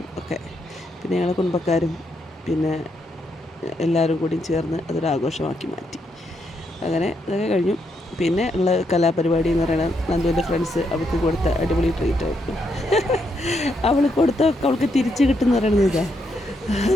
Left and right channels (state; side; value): normal; both; correlation 0.78